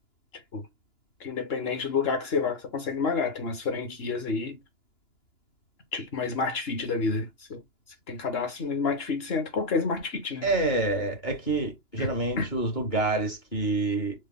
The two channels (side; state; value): right; late; 2.9 ms